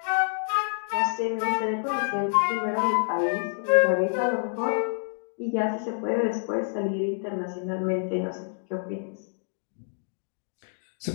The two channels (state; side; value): silent; right; 60 dB below the other